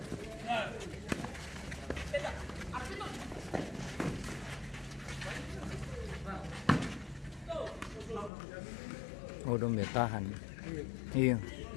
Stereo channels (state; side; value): drops out; right; at 8.3 s